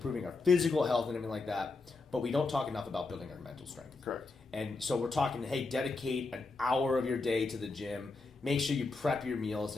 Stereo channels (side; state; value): right; quieter; 3.7 dB